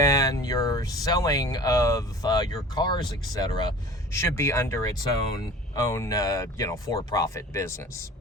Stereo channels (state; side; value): normal; both; correlation 0.42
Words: your selling of your cars, etc., should be under its own for-profit business.